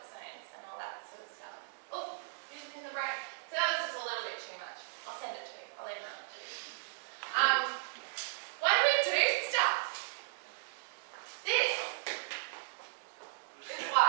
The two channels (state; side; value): silent; left; digital silence